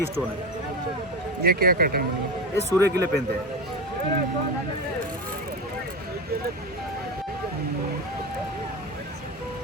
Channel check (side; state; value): both; normal; correlation 0.21